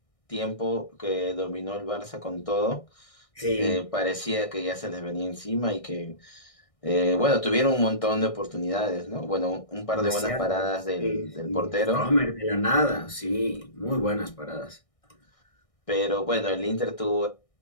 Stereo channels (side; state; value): right; late; 1.6 ms